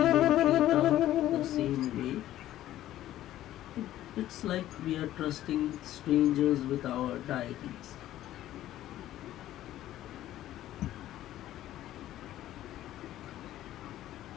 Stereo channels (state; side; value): quieter; right; 13.5 dB